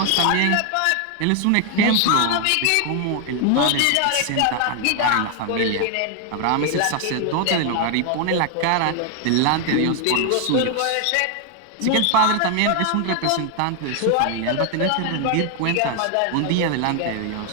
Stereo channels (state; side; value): different; both; correlation 0.00